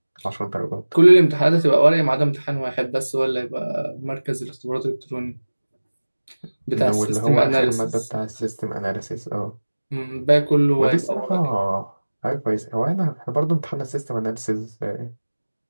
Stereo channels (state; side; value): inverted; both; correlation -1.00